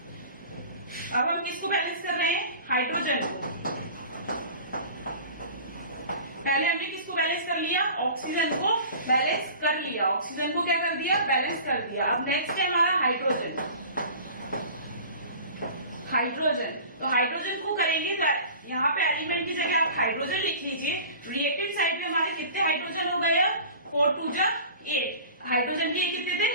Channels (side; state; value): both; inverted; correlation -0.41